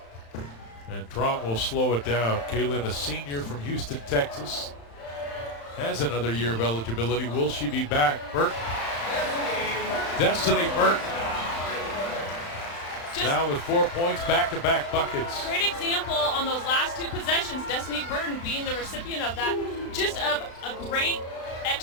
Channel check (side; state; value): right; late; 35 ms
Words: And Truong will slow it down. Kaylynne, a senior from Houston, Texas, has another year of eligibility. Will she be back? Burton. Destiny Burton. Now with 4 points, back-to-back buckets. Great example on those last 2 possessions. Destiny Burton being the recipient of that. Just of a great